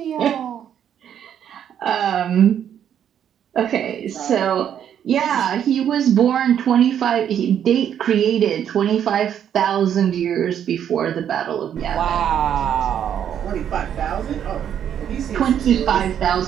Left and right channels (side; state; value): left; quieter; 9.3 dB